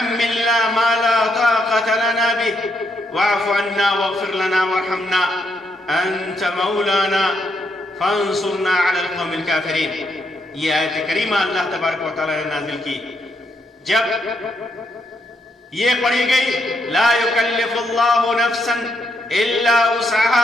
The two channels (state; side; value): normal; both; correlation 0.77